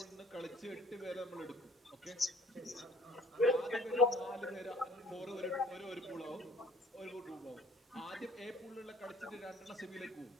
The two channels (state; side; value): normal; both; correlation 0.53